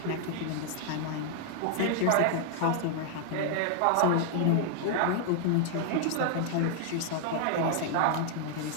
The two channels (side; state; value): both; different; correlation 0.00